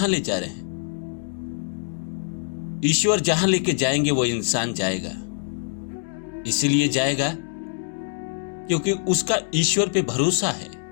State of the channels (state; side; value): silent; right; digital silence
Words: ले जा रहे हैं। ईश्वर जहां लेके जाएंगे वो इंसान जाएगा, इसीलिए जाएगा क्योंकि उसका ईश्वर पे भरोसा है